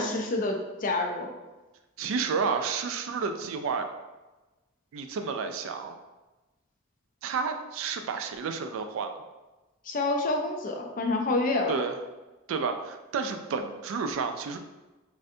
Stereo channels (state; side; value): normal; both; correlation 0.00